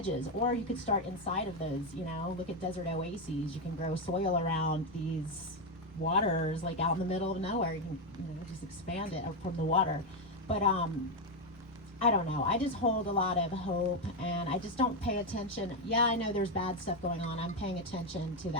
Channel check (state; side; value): normal; both; correlation 0.06